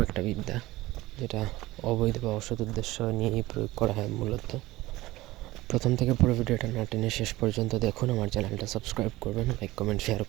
একটা বিদ্যা, যেটা অবৈধ বা অসৎ উদ্দেশ্য নিয়েই প্রয়োগ করা হয় মূলত। প্রথম থেকে পুরো ভিডিওটা না টেনে শেষ পর্যন্ত দেখুন। আমার চ্যানেলটা সাবস্ক্রাইব করবেন, লাইক কমেন্ট শেয়ার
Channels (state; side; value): quieter; left; 18.4 dB